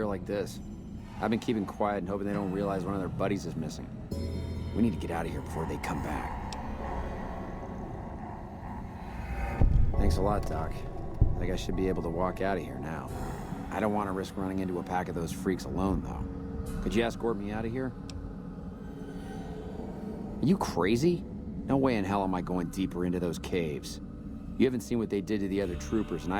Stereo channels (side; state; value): both; identical; correlation 1.00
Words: like this. I've been keeping quiet and hoping they don't realize one of their buddies is missing. We need to get out of here before they come back. Thanks a lot, Doc. I think I should be able to walk out of here now. I don't want to risk running into a pack of those freaks alone, though. Could you escort me out of here? Are you crazy? No way in hell am I going deeper into those caves. You haven't seen what they did to the other troopers, and